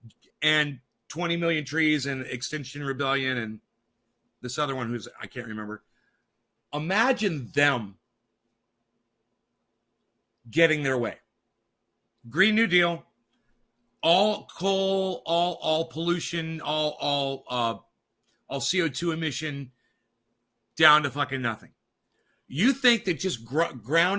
and 20 million trees and Extinction Rebellion and this other one who's, I can't remember. Imagine them getting their way. Green New Deal, all coal, all pollution, all CO2 emission down to fucking nothing. You think that just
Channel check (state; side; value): identical; both; correlation 1.00